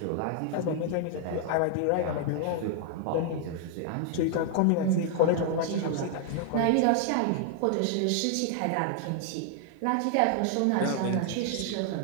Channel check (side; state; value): both; different; correlation 0.00